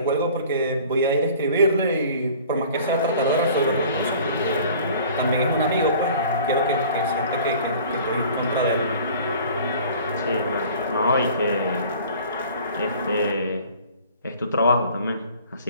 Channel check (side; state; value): both; inverted; correlation -0.48